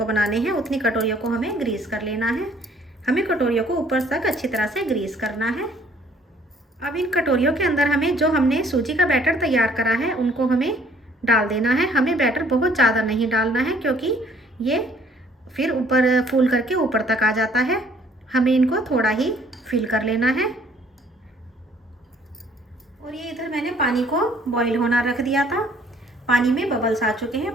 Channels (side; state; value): both; normal; correlation 0.60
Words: बनाने हैं उतनी कटोरियों को हमें ग्रीस कर लेना है। हमें कटोरियों को ऊपर तक अच्छी तरह से ग्रीस करना है। अब इन कटोरियों के अंदर हमें जो हमने सूजी का बैटर तैयार करा है उनको हमें डाल देना है। हमें बैटर बहुत ज़्यादा नहीं डालना है, क्योंकि ये फिर ऊपर फूल करके ऊपर तक आ जाता है। हमें इनको थोड़ा ही फिल कर लेना है। और ये इधर मैंने पानी को बॉईल होना रख दिया था। पानी में बबल्स आ चुके